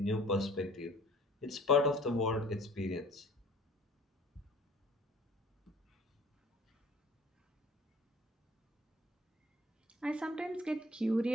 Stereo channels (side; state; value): both; normal; correlation 0.52